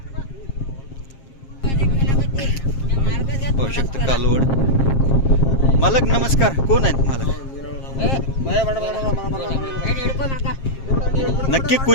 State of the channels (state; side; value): late; right; 7.5 ms